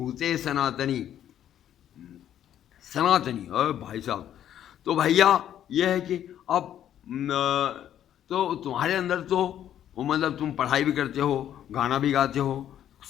सनातनी, सनातनी। अरे भाई साहब, तो भैया ये है कि अब तो तुम्हारे अंदर तो मतलब तुम पढ़ाई भी करते हो, गाना भी गाते हो,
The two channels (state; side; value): quieter; right; 10.7 dB